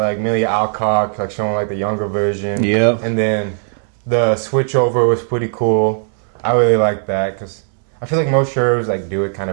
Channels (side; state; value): left; silent; 68 dB below the other